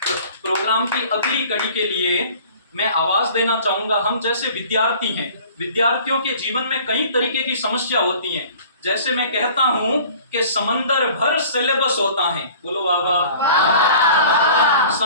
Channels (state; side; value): inverted; both; correlation -0.47